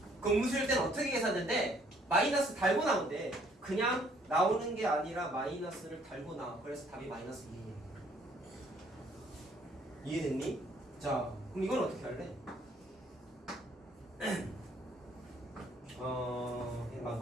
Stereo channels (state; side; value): normal; both; correlation 0.63